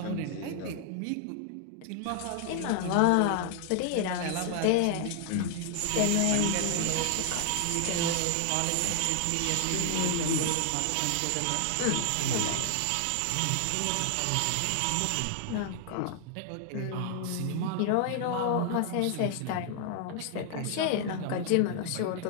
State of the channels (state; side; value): different; both; correlation 0.00